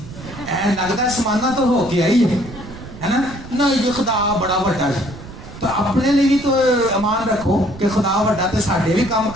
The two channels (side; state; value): right; noise; rumble, 14 dB below the sound